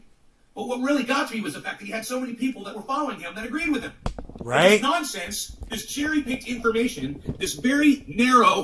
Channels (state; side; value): identical; both; correlation 1.00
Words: But what really got to me was the fact that he had so many people that were following him that agreed with him. Right? This nonsense, this cherry-picked information, this very